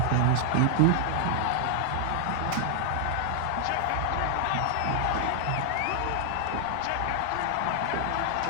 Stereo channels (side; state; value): both; different; correlation 0.00